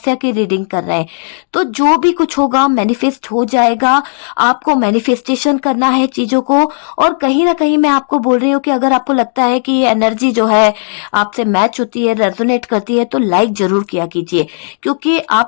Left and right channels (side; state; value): right; silent; digital silence